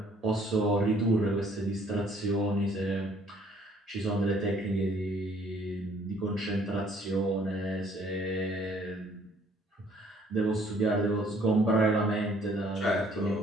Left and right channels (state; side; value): normal; both; correlation 0.61